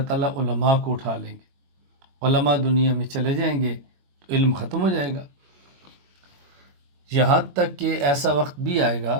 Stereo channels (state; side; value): late; left; 21 ms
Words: تعالیٰ علماء کو اٹھا لیں گے۔ علماء دنیا میں چلے جائیں گے تو علم ختم ہو جائے گا، یہاں تک کہ ایسا وقت بھی آئے گا